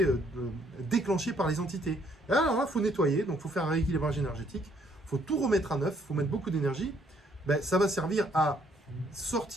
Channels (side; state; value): both; normal; correlation 0.67